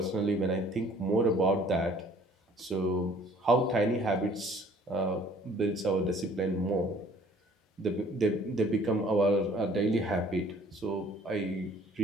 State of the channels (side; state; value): both; normal; correlation 0.55